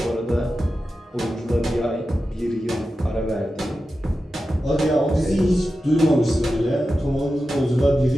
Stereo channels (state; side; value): normal; both; correlation 0.92